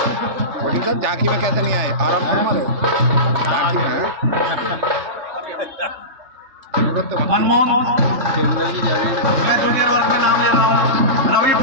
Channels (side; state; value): left; late; 3.3 ms